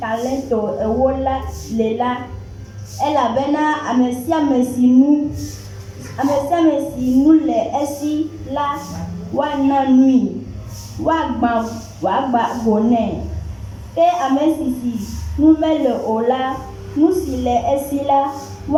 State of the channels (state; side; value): identical; both; correlation 1.00